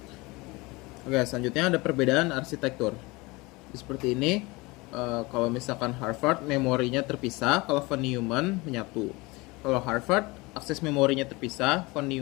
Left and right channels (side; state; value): right; quieter; 23.8 dB